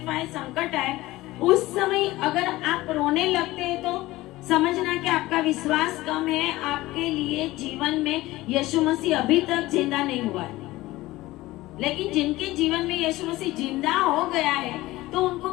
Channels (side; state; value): right; quieter; 18.2 dB